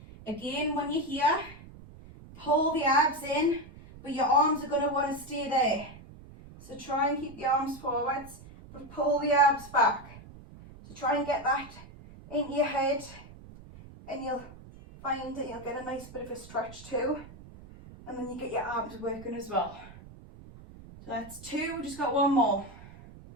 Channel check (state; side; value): noise; right; rumble, 18 dB below the sound